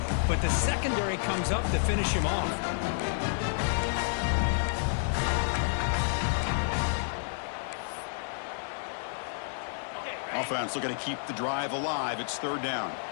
but the secondary comes up to finish him off. Offense looking to keep the drive alive. It's third down.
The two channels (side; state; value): right; silent; digital silence